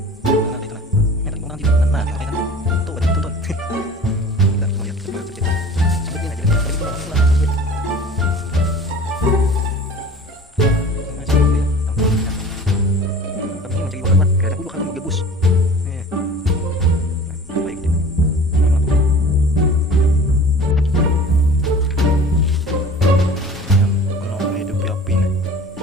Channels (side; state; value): both; normal; correlation 0.42